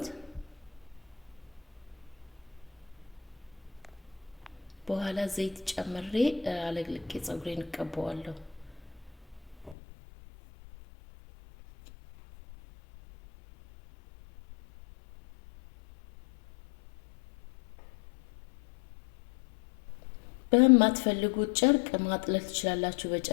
በኋላ ዘይት ጨምሬ አለቅልቄ ጸጉሬን እቀባዋለሁ። በማትፈልጉት ጨርቅ ማጥለል ትችላላችሁ።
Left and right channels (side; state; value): right; drops out; at 9.8 s